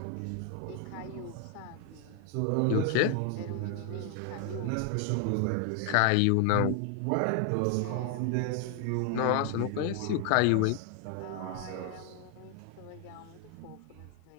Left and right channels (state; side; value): different; both; correlation 0.00